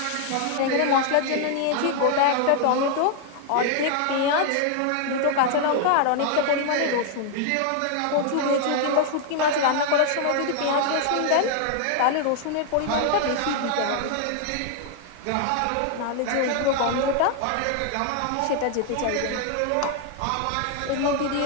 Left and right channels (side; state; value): both; different; correlation 0.00